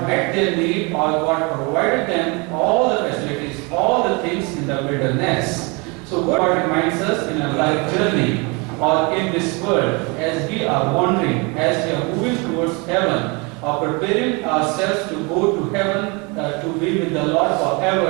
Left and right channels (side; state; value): left; quieter; 29.4 dB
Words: met their need, or God provided them all the facilities, all the things in the wilderness. So God reminds us in a life journey or in this world, as we are wandering, as we are moving towards heaven, or preparing ourselves to go to heaven to be with the Lord